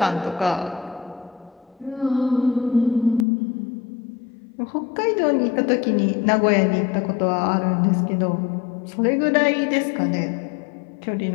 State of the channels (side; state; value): right; drops out; at 3.2 s